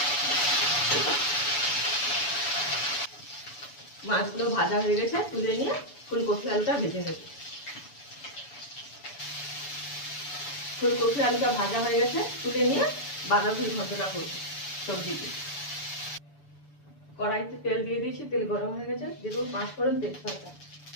মাছগুলো ভাজা হয়ে গেছে, তুলে নিয়ে ফুলকপি আলুটা ভেজে নেব। ফুলকপি আলুটা ভাজা হয়ে গেছে, তুলে নিয়ে বাঁধাকপির ঘন্টটা করব সবজিতে। কড়াইতে তেল দিয়ে দিয়েছি, তেল গরম হয়ে গেছে, দিয়ে দেবো 5 ফোড়ন তেজপাতা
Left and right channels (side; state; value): right; late; 7.0 ms